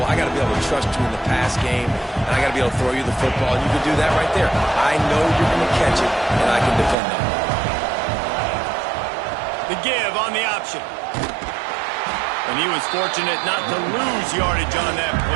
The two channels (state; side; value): drops out; left; at 7.0 s